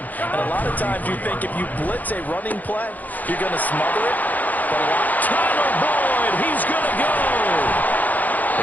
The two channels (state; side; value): late; right; 0.081 ms